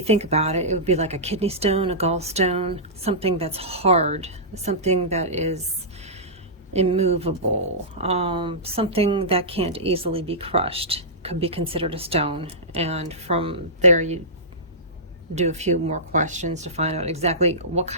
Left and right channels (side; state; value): both; normal; correlation -0.17